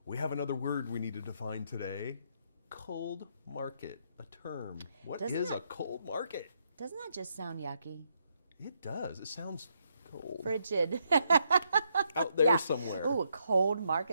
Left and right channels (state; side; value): inverted; both; correlation -0.77